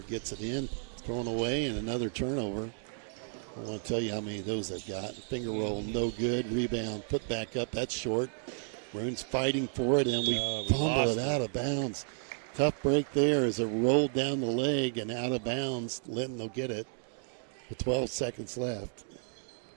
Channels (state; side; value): silent; left; digital silence